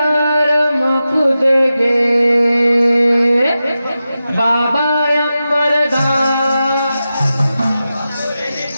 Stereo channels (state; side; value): inverted; both; correlation -0.92